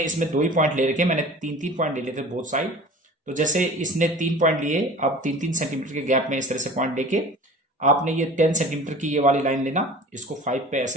इसमें 2 ही पॉइंट ले रखे, मैंने 3-3 पॉइंट ले लिए थे बोथ साइड। तो जैसे इसने 3 पॉइंट लिए, अब 3-3 सेंटीमीटर के गैप में इस तरह से पॉइंट लेके आपने ये 10 सेंटीमीटर की ये वाली लाइन लेना, इसको 5 पे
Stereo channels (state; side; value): normal; both; correlation 0.42